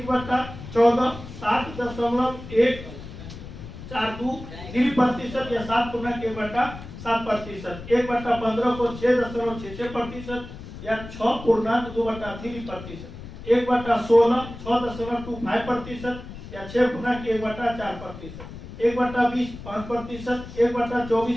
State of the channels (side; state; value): left; noise; rumble, 13 dB below the sound